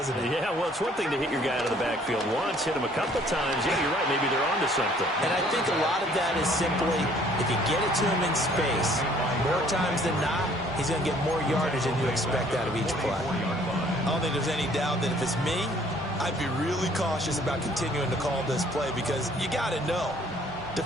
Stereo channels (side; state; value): both; normal; correlation 0.59